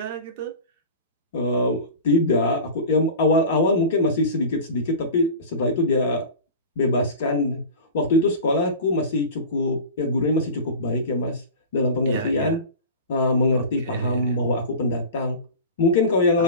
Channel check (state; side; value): inverted; both; correlation -0.33